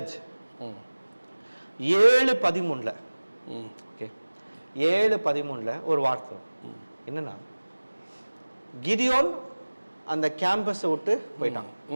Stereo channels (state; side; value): inverted; both; correlation -1.00